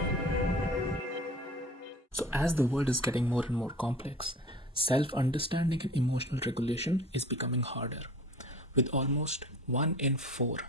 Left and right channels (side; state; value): both; normal; correlation 0.42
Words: So, as the world is getting more and more complex, self understanding and emotional regulation is becoming harder. With almost 1 in 4